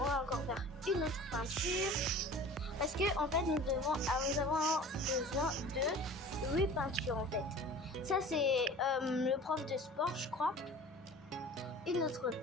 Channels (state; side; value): normal; both; correlation 0.41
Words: encore faire une autre peinture parce que en fait nous avons besoin de 8 peintures en fait. Ça c'est le prof de sport, je crois. Une autre